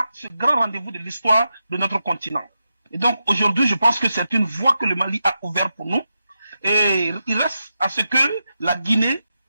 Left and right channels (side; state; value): both; inverted; correlation -0.88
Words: ce grand rendez-vous de l'histoire de notre continent. Et donc aujourd'hui, je pense que c'est une voie que le Mali a ouverte pour nous. Et il reste à ce que la Guinée,